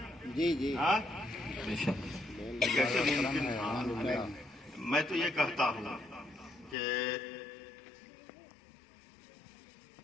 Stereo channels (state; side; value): drops out; right; at 6.8 s